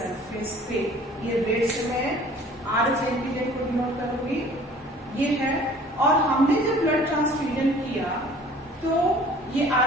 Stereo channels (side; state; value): both; normal; correlation 0.50